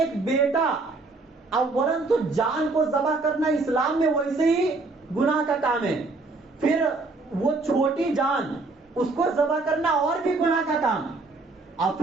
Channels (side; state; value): left; quieter; 3.5 dB